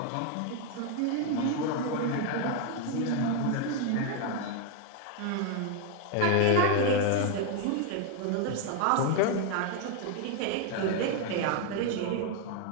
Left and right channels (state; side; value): different; both; correlation 0.01